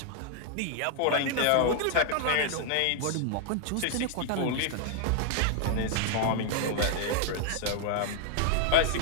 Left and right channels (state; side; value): different; both; correlation 0.00